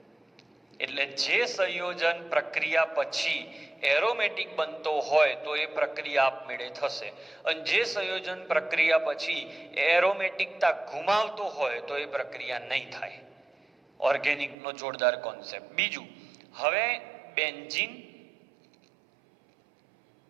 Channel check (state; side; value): drops out; left; at 14.6 s